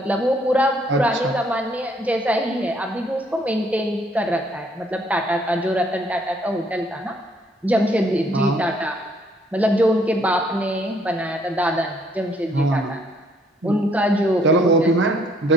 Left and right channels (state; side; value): normal; both; correlation 0.66